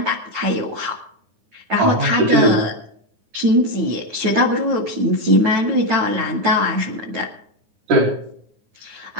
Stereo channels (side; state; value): left; late; 9.6 ms